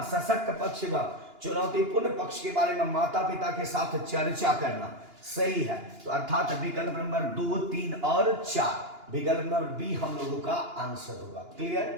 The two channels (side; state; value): left; late; 2.9 ms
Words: सशक्त पक्ष व चुनौतीपूर्ण पक्ष के बारे में माता पिता के साथ चर्चा करना। सही है, तो अर्थात विकल्प नंबर 2, 3 और 4, विकल्प नंबर बी हम लोगों का आंसर होगा।